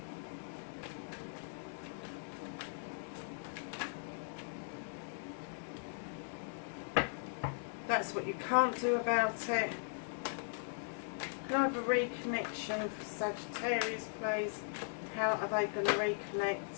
That's what you can't do about it. Can I have a reconnection for Sagittarius, please? How are they going to reconnect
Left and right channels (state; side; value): silent; right; digital silence